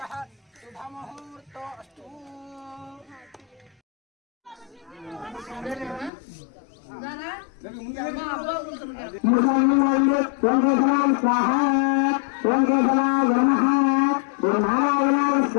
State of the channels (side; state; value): right; drops out; at 6.1 s